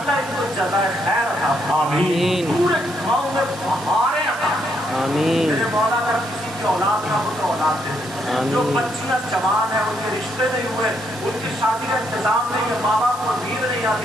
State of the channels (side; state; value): right; noise; hiss, 16 dB below the sound